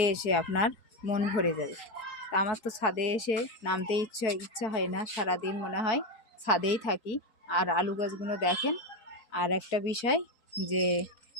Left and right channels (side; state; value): right; late; 4.5 ms